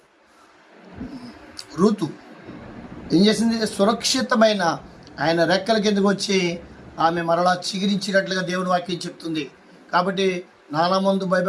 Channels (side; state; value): both; identical; correlation 1.00